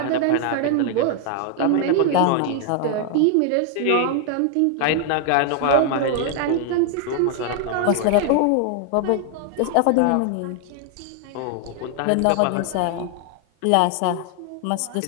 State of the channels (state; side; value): different; both; correlation 0.00